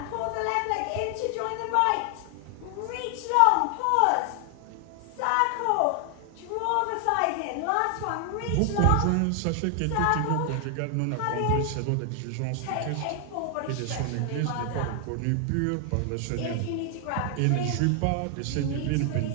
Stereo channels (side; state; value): both; different; correlation 0.00